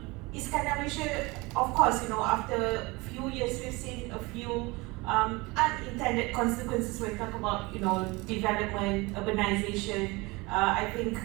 Iskandar Malaysia, of course, after a few years we've seen a few unintended consequences when we talk about development, urbanization. I think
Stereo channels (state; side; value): quieter; left; 24.1 dB